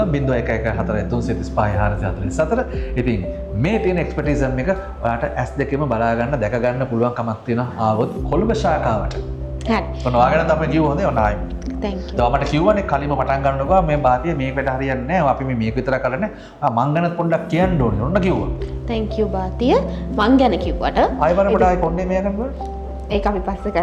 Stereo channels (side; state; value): both; identical; correlation 1.00